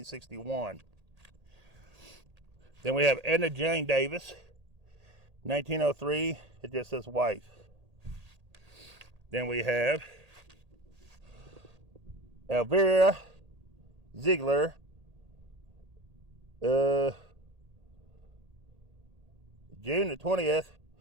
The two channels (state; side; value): late; left; 1.8 ms